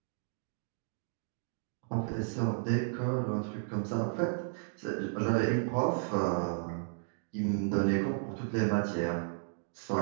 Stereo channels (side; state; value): left; silent; digital silence